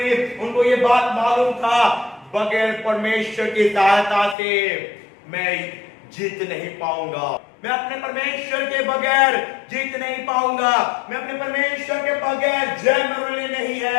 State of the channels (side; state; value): right; drops out; at 4.4 s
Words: उनको ये बात मालूम था, बगैर परमेश्वर की सहायता से मैं जीत नहीं पाऊंगा, मैं अपने परमेश्वर के बगैर जीत नहीं पाऊंगा, मैं अपने परमेश्वर के बगैर जय मेरे लिए नहीं